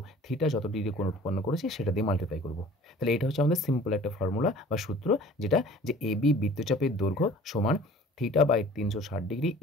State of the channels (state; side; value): normal; both; correlation 0.47